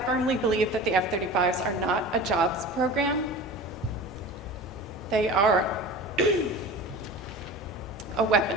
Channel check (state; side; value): normal; both; correlation 0.36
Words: believe that the F-35s are not a jobs program. They are a